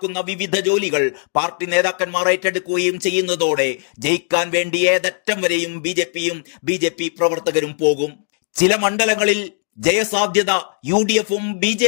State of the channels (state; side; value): silent; right; 58 dB below the other